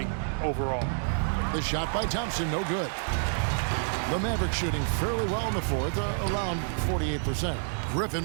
overall. The shot by Thompson, no good. The Mavericks shooting fairly well in the fourth, around 48%.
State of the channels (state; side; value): silent; left; digital silence